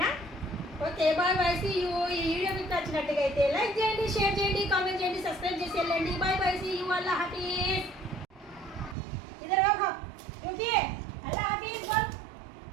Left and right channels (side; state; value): left; drops out; at 9.0 s